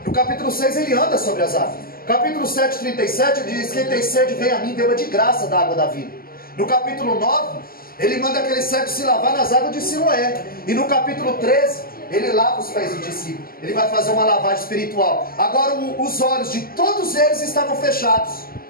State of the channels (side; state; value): right; late; 0.42 ms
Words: No capítulo 6, ele anda sobre as águas. Capítulo 7, 37, ele diz: quem tem sede, vem a mim, beba de graça da água da vida. No capítulo 9, ele manda aquele cego se lavar nas águas de Siloé. E no capítulo 13, ele lava os pés do discípulo. Ele vai fazer uma lavagem espiritual. Agora os olhos de todos eles estavam fechados,